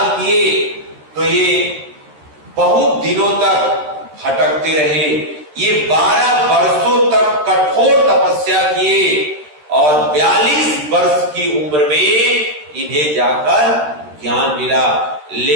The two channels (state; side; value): late; left; 13 ms